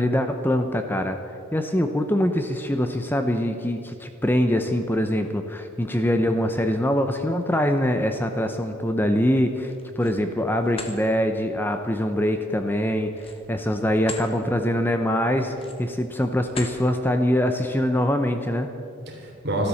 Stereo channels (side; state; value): both; normal; correlation 0.79